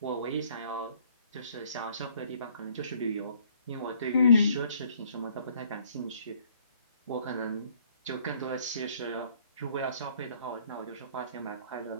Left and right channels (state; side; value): inverted; both; correlation -0.60